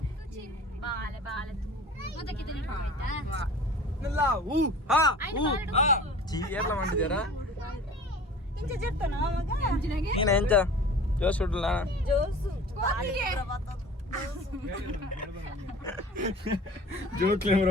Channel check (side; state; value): both; normal; correlation 0.43